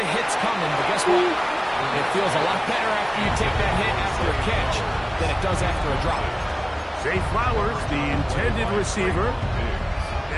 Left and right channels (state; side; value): identical; both; correlation 1.00